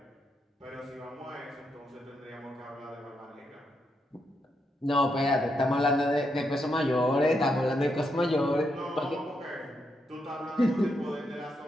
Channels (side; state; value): both; normal; correlation 0.81